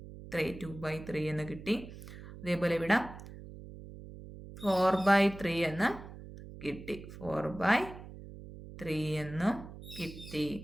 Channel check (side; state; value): right; noise; hum, 14 dB below the sound